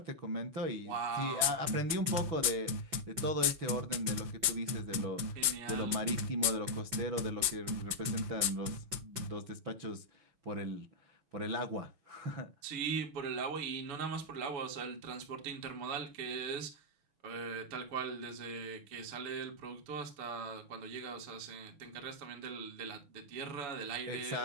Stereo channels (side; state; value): left; late; 5.9 ms